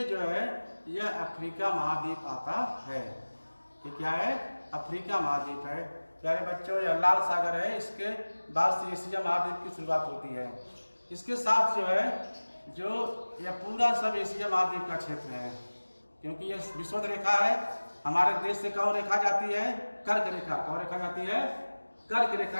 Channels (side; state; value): both; inverted; correlation -1.00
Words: जो है यह अफ्रीका महाद्वीप आता है। ये क्या है? अफ्रीका महाद्वीप है। प्यारे बच्चों, यह लाल सागर है, इसके बाद से एशिया महाद्वीप की शुरुआत होती है। इसके साथ जो है जो यह पूरा सब एशिया महाद्वीप का क्षेत्र है, क्योंकि यह विषुवत रेखा है। हमारे देश से कौन रेखा जाती है? कर्क रेखा। कौन रेखा जाती है? कर्क रेखा